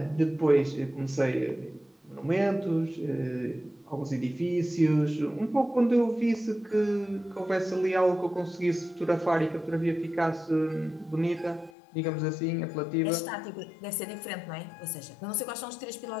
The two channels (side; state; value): right; drops out; at 11.7 s